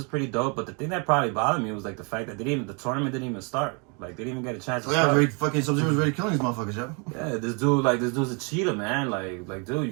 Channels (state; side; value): quieter; left; 34.1 dB